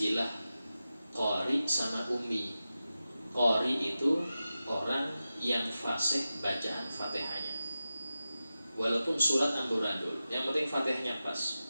qari sama ummi. Qari itu orang yang fasih bacaan Fatihahnya, walaupun surat amburadul, yang penting Fatihahnya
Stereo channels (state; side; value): inverted; both; correlation -0.93